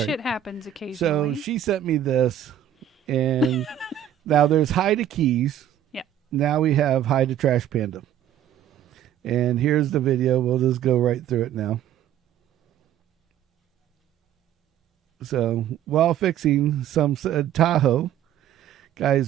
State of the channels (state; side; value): quieter; left; 10.7 dB